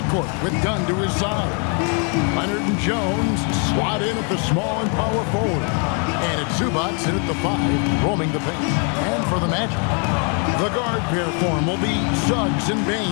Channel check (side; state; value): right; quieter; 38.7 dB